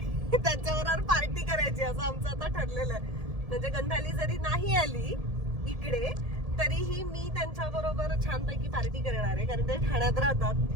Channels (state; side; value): late; left; 1.7 ms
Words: त्यांच्याबरोबर पार्टी करायची असं आमचं आता ठरलेलं आहे. म्हणजे गंधाली जरी नाही आली इकडे तरीही मी त्यांच्या बरोबर छानपैकी पार्टी करणार आहे, कारण ते ठाण्यात राहतात.